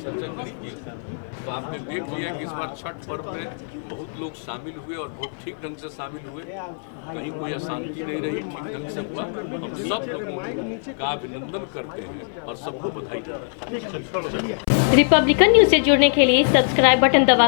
चर्चा करेंगे तो आपने देख लिया कि इस बार छठ पर्व में बहुत लोग शामिल हुए और बहुत ठीक ढंग से शामिल हुए, कहीं कोई अशांति नहीं रही, ठीक ढंग से हुआ। हम सब लोगों का अभिनंदन करते हैं और सबको बधाई देते हैं। रिपब्लिकन न्यूज़ से जुड़ने के लिए सब्सक्राइब बटन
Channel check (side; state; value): right; silent; 62 dB below the other